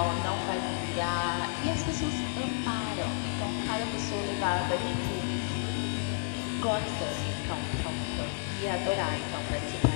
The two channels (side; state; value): right; silent; 56 dB below the other